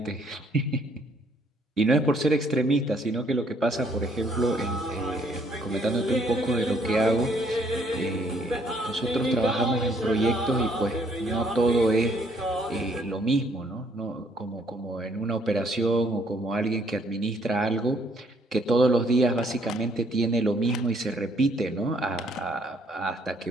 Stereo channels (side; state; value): both; normal; correlation 0.66